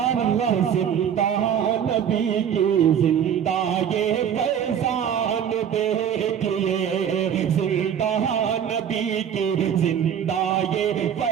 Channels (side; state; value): left; quieter; 8.7 dB